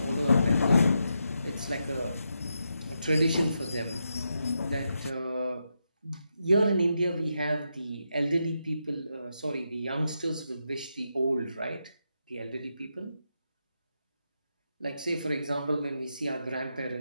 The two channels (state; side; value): inverted; both; correlation -0.84